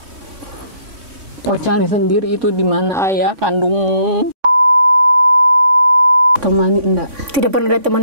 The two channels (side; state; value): left; late; 3.5 ms